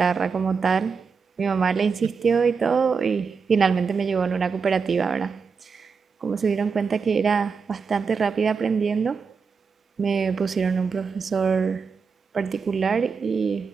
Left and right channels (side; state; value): left; quieter; 5.4 dB